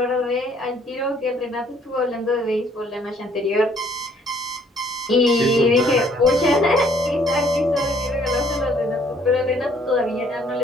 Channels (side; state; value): both; normal; correlation 0.62